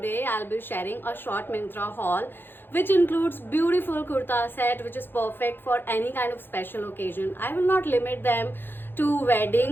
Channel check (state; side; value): late; right; 0.10 ms